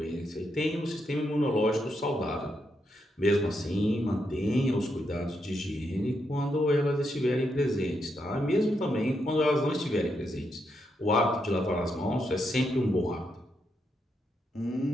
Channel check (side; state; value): both; normal; correlation 0.81